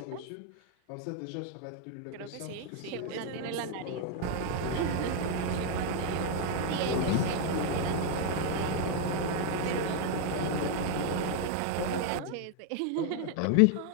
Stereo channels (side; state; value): both; different; correlation 0.01